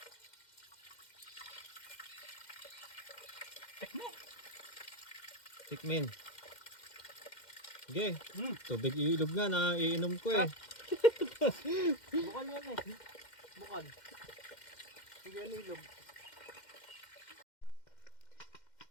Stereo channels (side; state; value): right; late; 2.1 ms